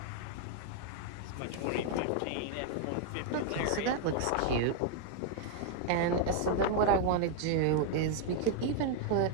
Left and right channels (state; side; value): different; both; correlation 0.00